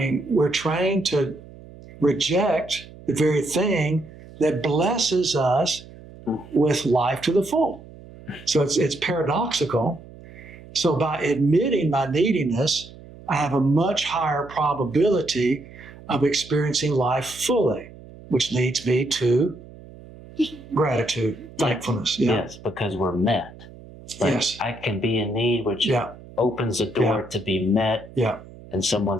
we're trained to reject the very thing that blesses us with life to the full. So it's paradoxical. So by admitting my neediness, I have a much higher probability of experiencing life fully, which leads me to gratitude, thankfulness. Yeah. Yes, because we're met. Like, Yes. I can be in need, which Yeah. opens the door to be met, Yeah. and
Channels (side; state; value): right; noise; hum, 19 dB below the sound